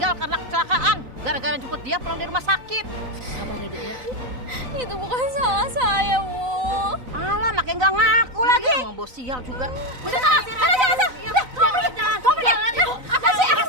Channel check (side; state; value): left; late; 3.9 ms